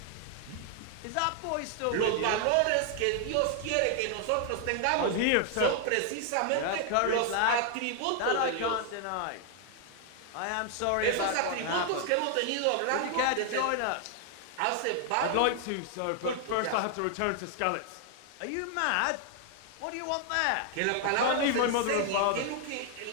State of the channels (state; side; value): different; both; correlation 0.00